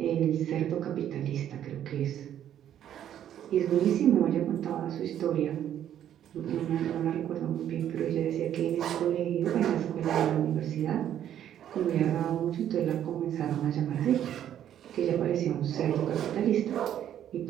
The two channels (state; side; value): quieter; left; 10.6 dB